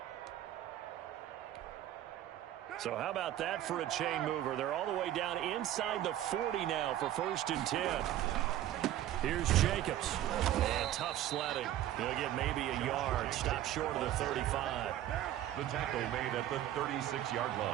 So how about that for a chain mover? They're all the way down inside the 40 now for 1st and 10. Here's Jacobs. And tough sledding. He'll get maybe a yard. Stop short of the 35. The tackle made at the 36-yard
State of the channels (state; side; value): quieter; left; 12.7 dB